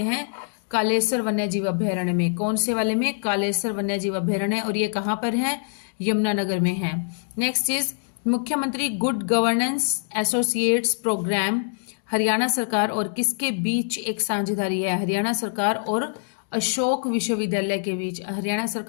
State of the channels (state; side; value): silent; right; digital silence